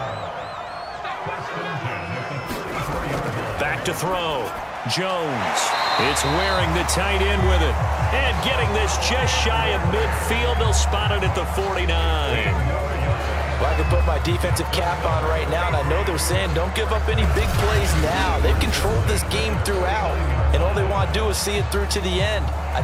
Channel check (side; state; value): both; identical; correlation 1.00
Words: Back to throw. Jones. It's wearing the tight end with it. And getting this just shy of midfield. They'll spot it at the 49. Well, I can put my defensive cap on right now, and I know they're saying don't give up any big plays now. They've controlled this game throughout, and all they want to do is see it through to the end. I